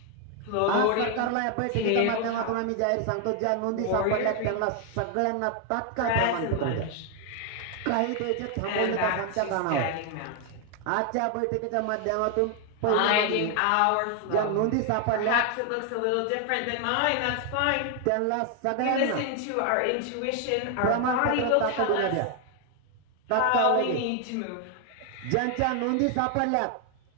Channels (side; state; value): both; different; correlation 0.00